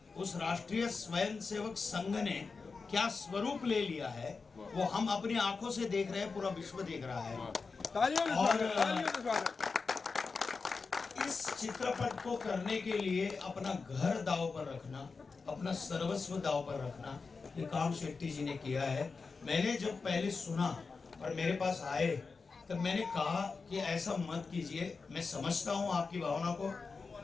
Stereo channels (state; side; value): quieter; right; 4.6 dB